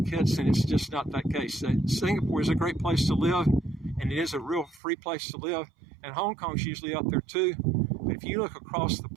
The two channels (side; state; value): left; drops out; at 4.8 s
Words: Kitts, and it's just not that case. Singapore is a great place to live, and it is a real free place to live, and Hong Kong's usually up there too. But if you look across the